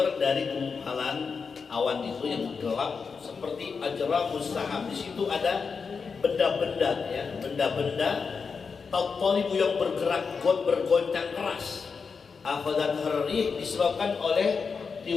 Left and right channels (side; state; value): right; quieter; 5.4 dB